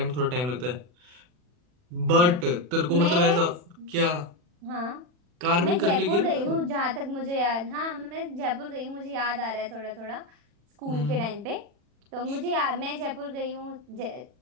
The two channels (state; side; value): late; left; 40 ms